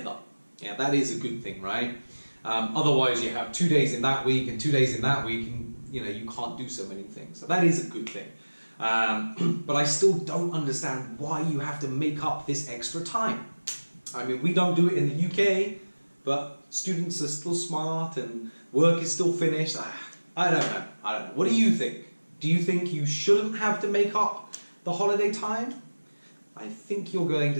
Yeah, that is a good thing, right? Otherwise, you have 2 days in that week and 2 days in that week, and you can't do so many things. So that is a good thing. But I still don't understand why you have to make up this extra time. I mean, we don't do it in the UK, but students are still smart and work is still finished. I don't know. What do you think? Do you think you shouldn't have to make up the holiday time? I think you're going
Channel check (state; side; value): inverted; both; correlation -1.00